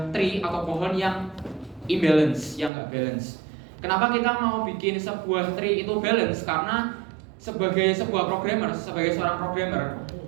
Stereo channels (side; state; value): left; drops out; at 2.7 s